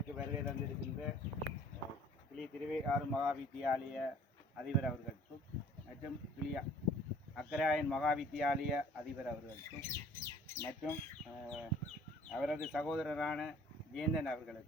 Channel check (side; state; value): both; normal; correlation 0.53